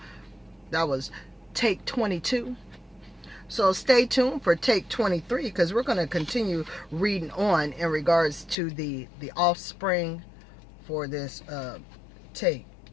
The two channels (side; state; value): right; drops out; at 8.6 s